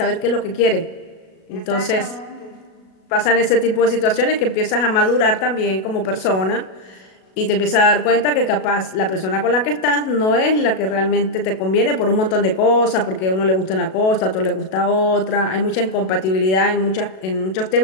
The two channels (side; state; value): right; late; 37 ms